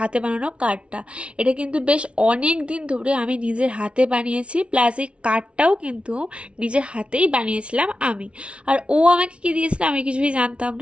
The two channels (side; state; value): left; late; 0.060 ms